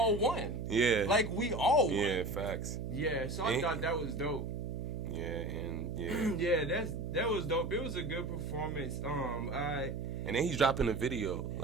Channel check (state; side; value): noise; right; hum, 4 dB below the sound